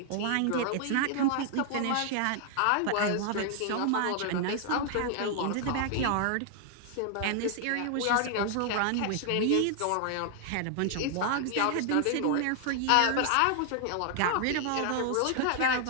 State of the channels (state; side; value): different; both; correlation 0.00